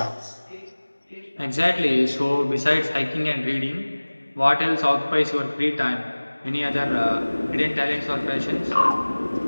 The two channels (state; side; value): inverted; both; correlation -1.00